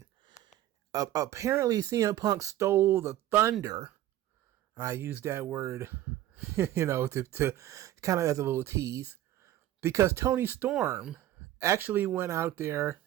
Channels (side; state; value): left; quieter; 13.5 dB